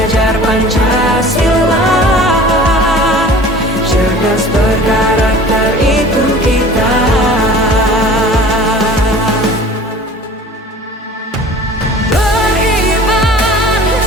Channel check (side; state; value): both; normal; correlation 0.44